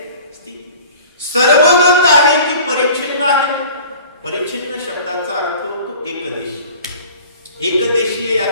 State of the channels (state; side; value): inverted; both; correlation -0.45